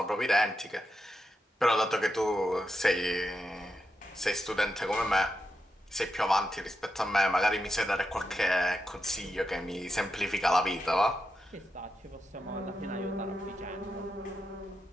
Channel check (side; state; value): both; normal; correlation 0.87